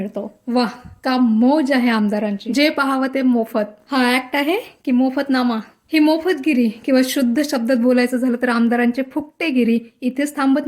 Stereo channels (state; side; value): identical; both; correlation 1.00